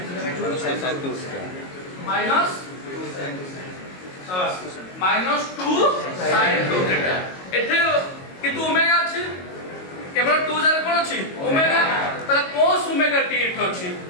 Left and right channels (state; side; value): late; right; 22 ms